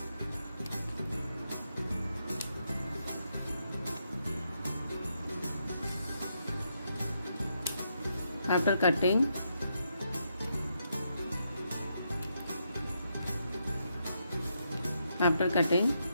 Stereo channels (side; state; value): both; inverted; correlation -0.80